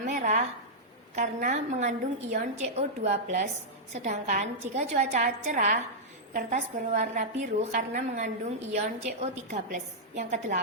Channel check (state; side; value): normal; both; correlation -0.08